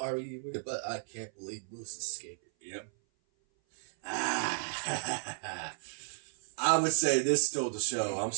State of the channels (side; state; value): left; silent; 55 dB below the other